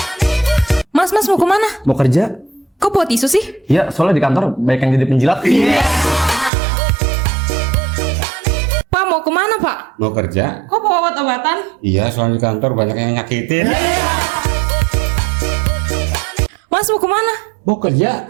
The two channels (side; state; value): left; drops out; at 6.5 s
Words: Mas mau kemana? Mau kerja? Kok bawa tisu sih? Iya, soalnya di kantor banyak yang jadi penjilat. Pak, mau kemana, Pak? Mau kerja? Kok bawa obat-obatan? Iya, soalnya di kantor banyak yang nyakitin. Mas mau kemana? Mau